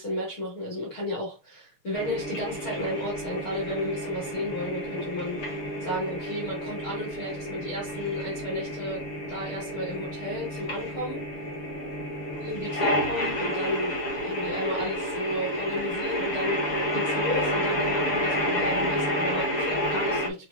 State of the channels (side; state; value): right; late; 6.9 ms